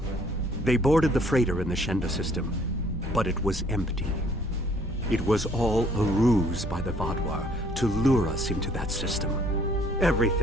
They boarded the freighter in the Shenda system, but it was empty. It was all a ruse by the Vaadwaur to lure us into that system.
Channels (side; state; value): both; normal; correlation 0.61